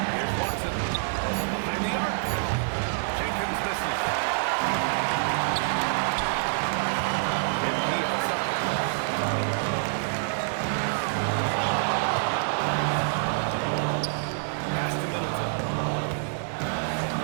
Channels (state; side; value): silent; left; 60 dB below the other